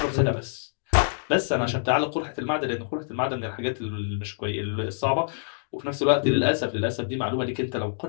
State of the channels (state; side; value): silent; right; digital silence